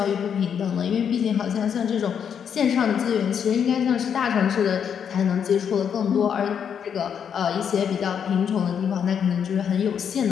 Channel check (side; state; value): right; quieter; 7.8 dB